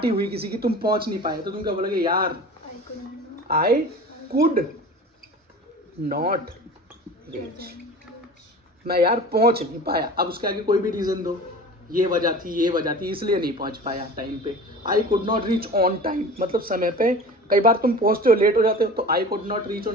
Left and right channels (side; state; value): both; normal; correlation 0.37